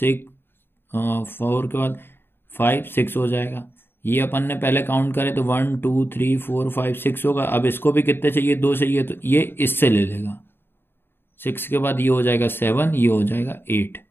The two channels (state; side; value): late; right; 0.10 ms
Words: 4 के बाद 5 6 हो जाएगा। ये अपन ने पहले काउंट करे तो 1 2 3 4 5 6 होगा। अब इसको भी कितने चाहिए, 2 चाहिए, तो ये इससे ले लेगा। 6 के बाद ये हो जाएगा 7, ये हो जाएगा 8।